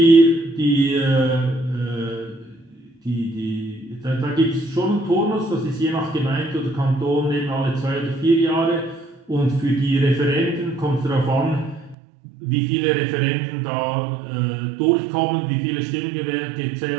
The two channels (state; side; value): drops out; left; at 12.0 s